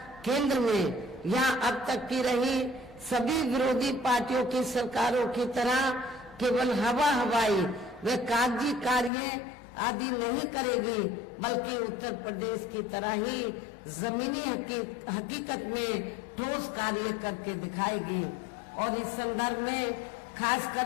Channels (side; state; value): right; drops out; at 9.1 s